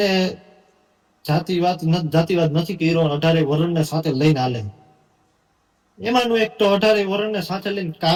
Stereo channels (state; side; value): identical; both; correlation 1.00